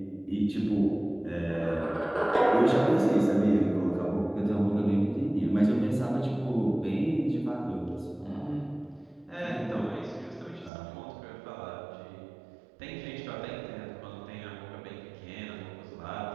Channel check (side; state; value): left; drops out; at 10.7 s